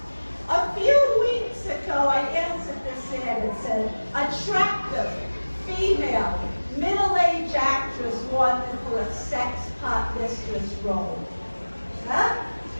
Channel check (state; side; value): inverted; both; correlation -1.00